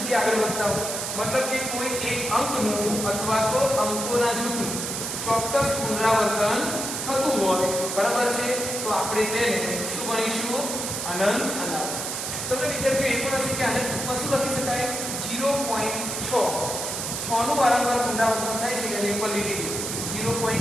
આગળ વધતા હોય. મતલબ કે કોઈ એક અંકનું અથવા તો અંકોના જૂથનું ચોક્કસ પુનરાવર્તન થતું હોય. બરાબર છે? તો આપણે તેને શું ગણીશું? અનંત અનાવૃત. તમને વિદ્યાર્થીઓ એ પણ હશે કે આને ટૂંકમાં શું લખી શકાય? 0.6 નું વારંવાર પુનરાવર્તન થાય છે એટલે ઉપર લીટી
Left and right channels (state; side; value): noise; right; hiss, 4 dB below the sound